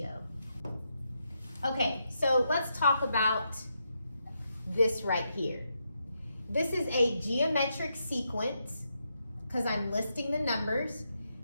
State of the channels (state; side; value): inverted; both; correlation -0.82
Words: Okay, so let's talk about this right here. This is a geometric sequence because I'm listing the numbers.